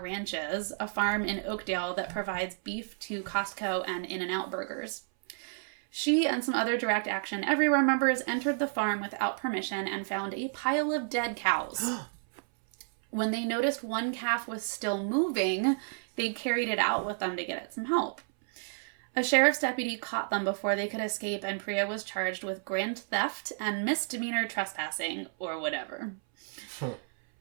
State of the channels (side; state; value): left; silent; 57 dB below the other